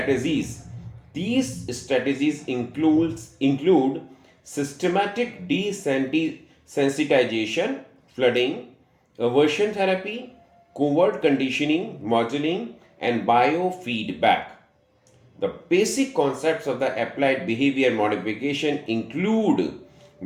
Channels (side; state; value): both; identical; correlation 1.00